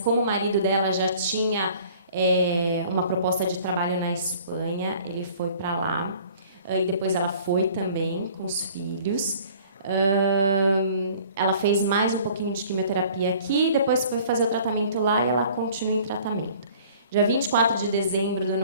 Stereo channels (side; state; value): both; inverted; correlation -0.51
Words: como o marido dela já tinha uma proposta de trabalho na Espanha, ele foi para lá. E depois ela foi também com os filhos. Ela fez mais um pouquinho de quimioterapia aqui, depois foi fazer o tratamento lá e ela continua em tratamento. Dia 24 de dezembro do